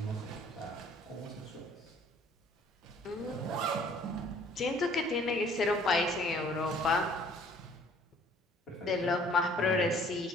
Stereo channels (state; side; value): normal; both; correlation 0.57